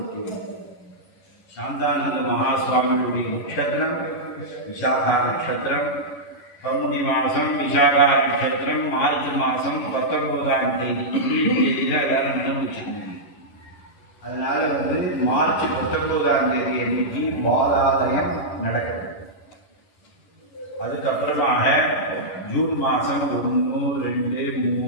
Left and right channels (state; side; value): late; right; 11 ms